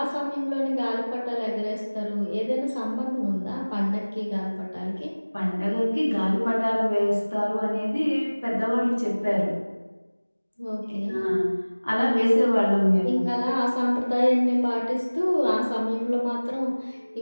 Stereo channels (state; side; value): inverted; both; correlation -1.00